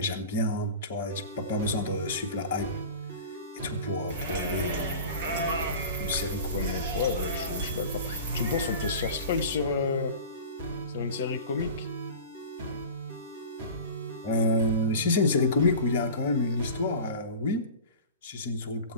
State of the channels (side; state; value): both; inverted; correlation -0.35